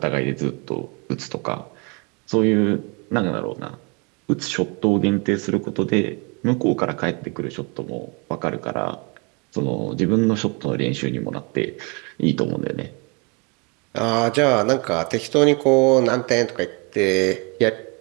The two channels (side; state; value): left; quieter; 31.2 dB